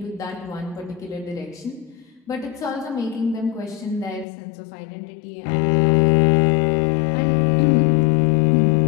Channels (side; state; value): right; drops out; at 4.2 s